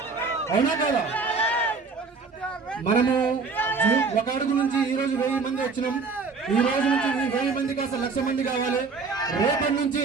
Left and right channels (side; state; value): left; quieter; 4.6 dB